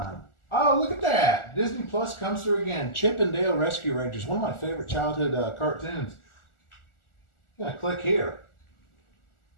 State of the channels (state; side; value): late; right; 1.4 ms